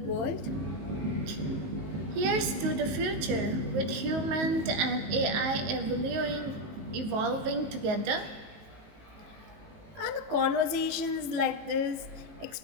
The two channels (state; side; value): late; left; 19 ms